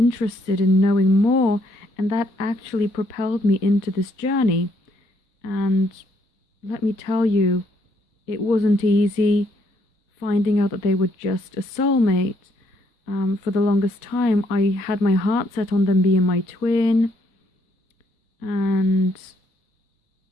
in knowing more, and that actually propelled me into this journey. And let me tell you, it wasn't easy finding out that they were just a soulmate. For the longest time, I had my heart set on them being my twin. And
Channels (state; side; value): late; right; 4.0 ms